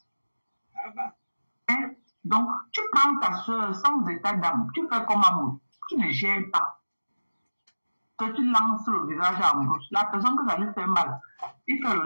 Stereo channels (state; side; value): inverted; both; correlation -1.00